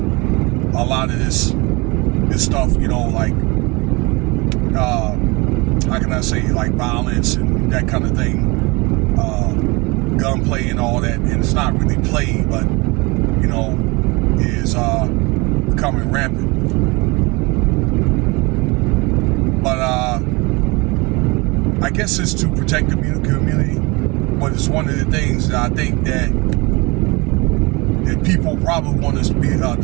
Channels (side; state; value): left; quieter; 25.9 dB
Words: lot of this stuff, you know, like, how can I say, like violence and that kind of thing, gunplay and all that, and it's not really play, but, you know, is becoming rampant. But I guess it's to protect the community, but it's one of the things that I think that people probably want us to be